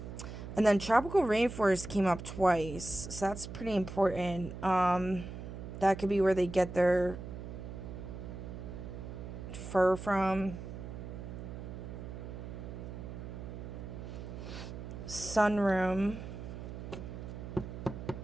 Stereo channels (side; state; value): right; noise; hum, 9 dB below the sound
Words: And then tropical rainforest came up twice, so that's pretty important. That could be where they get their fur from. Sunroom.